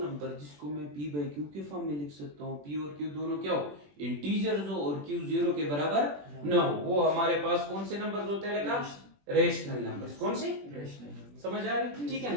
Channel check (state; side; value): late; left; 21 ms